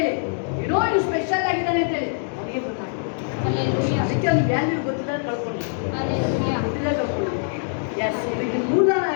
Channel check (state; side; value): silent; right; digital silence